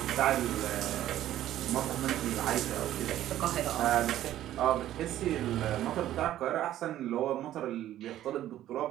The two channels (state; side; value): quieter; left; 12.9 dB